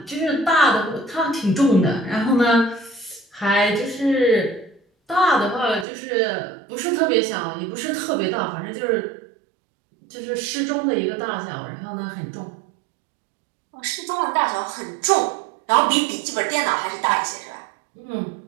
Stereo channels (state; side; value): drops out; left; at 5.9 s